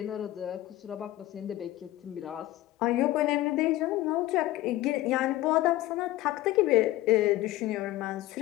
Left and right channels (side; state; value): right; quieter; 16.1 dB